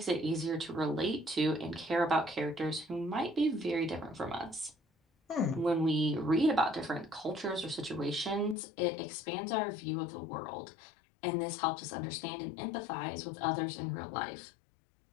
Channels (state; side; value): drops out; right; at 8.6 s